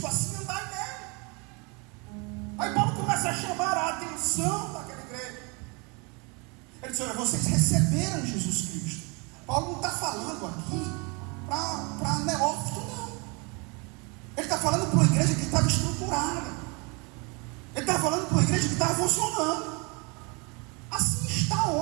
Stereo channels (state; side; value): quieter; left; 30.6 dB